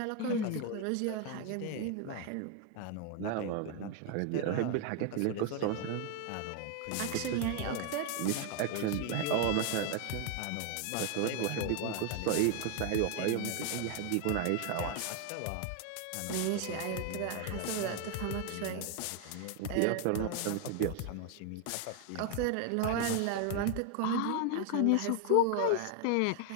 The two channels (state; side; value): different; both; correlation 0.00